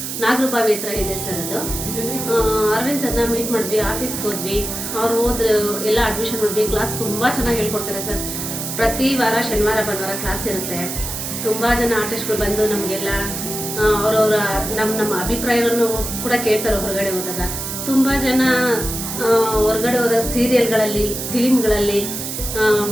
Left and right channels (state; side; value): noise; right; hiss, 5 dB below the sound